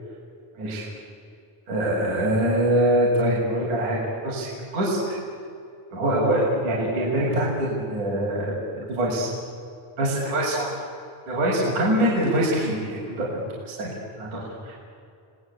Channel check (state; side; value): late; left; 9.8 ms